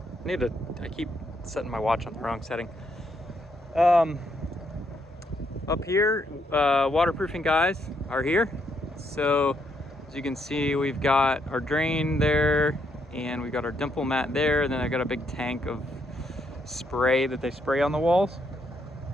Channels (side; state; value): both; normal; correlation 0.75